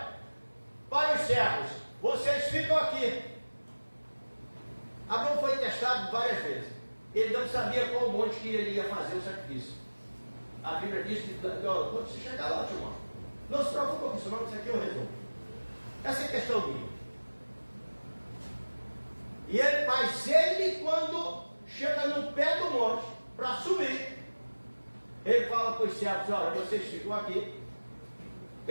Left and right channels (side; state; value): both; inverted; correlation -1.00